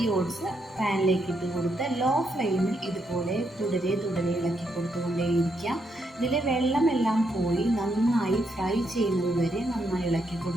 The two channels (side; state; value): both; normal; correlation 0.78